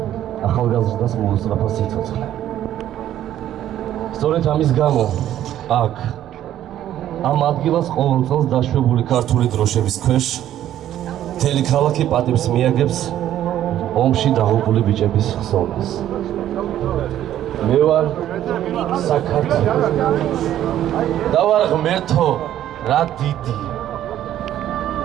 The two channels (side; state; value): left; quieter; 11.9 dB